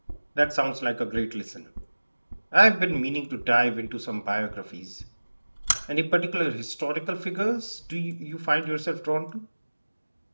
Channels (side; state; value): both; inverted; correlation -1.00